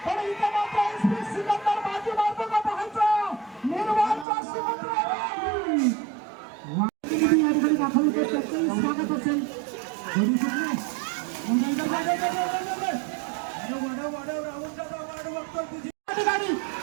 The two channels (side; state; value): left; drops out; at 4.2 s